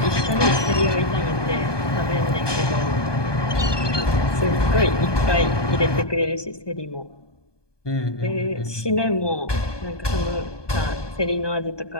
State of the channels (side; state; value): right; late; 1.2 ms